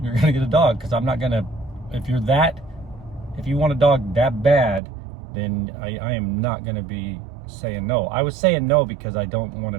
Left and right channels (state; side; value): drops out; left; at 4.8 s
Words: going to get a dog. Because I'm not going to, if you want a dog that bad, then I am not going to be saying no. I was saying no because I don't want